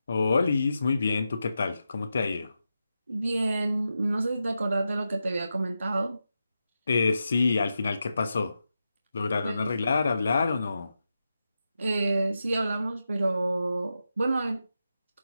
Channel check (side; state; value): both; inverted; correlation -0.88